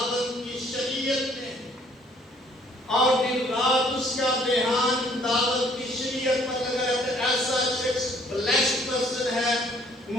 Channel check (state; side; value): normal; both; correlation 0.61